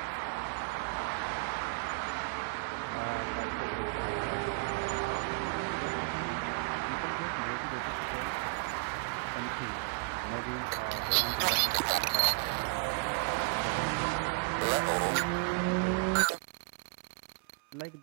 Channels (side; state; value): left; quieter; 34.3 dB